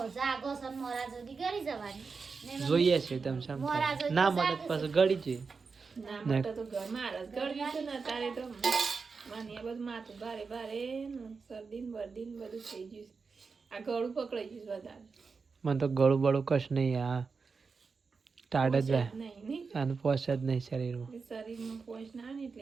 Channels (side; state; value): left; quieter; 4.9 dB